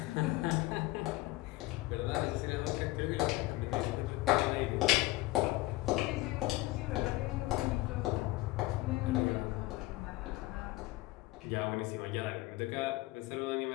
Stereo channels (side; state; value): right; quieter; 19.5 dB